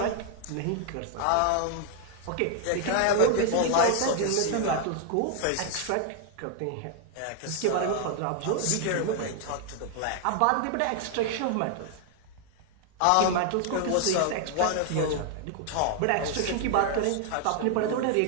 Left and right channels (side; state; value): both; different; correlation 0.00